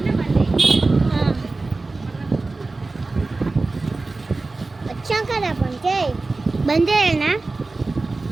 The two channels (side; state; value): left; quieter; 3.5 dB